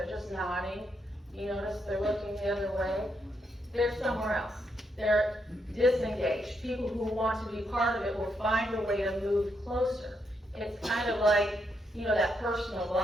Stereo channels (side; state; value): both; normal; correlation 0.79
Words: just nodding, you notice they're looking the other way, they're somewhere else. They're disengaged. People who want to be part of it will find a way to move closer. It's kind of like, you know, that personal